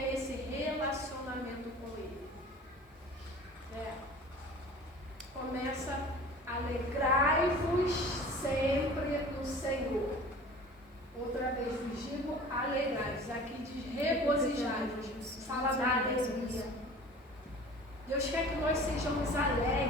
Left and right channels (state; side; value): normal; both; correlation 0.42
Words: esse relacionamento com Ele. Começa: alegrai-vos sempre no Senhor. Outra vez vos digo, alegrai-vos. Aqui diz regozijai-vos. Fala da alegria. Deus quer que nós sejamos